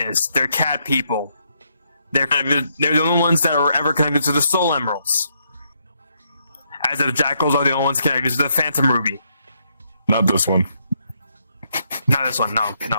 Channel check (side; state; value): both; inverted; correlation -0.76